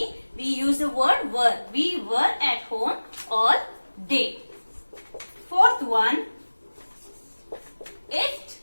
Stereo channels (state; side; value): inverted; both; correlation -1.00